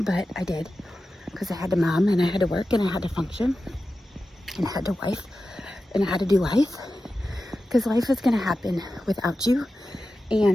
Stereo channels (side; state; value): both; normal; correlation 0.93